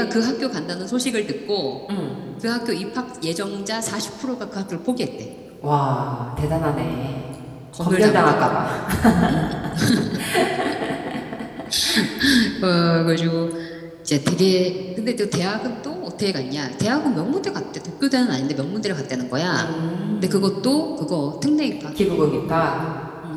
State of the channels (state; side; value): identical; both; correlation 1.00